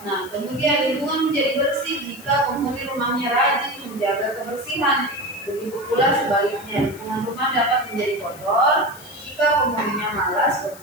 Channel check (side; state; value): left; noise; hiss, 19 dB below the sound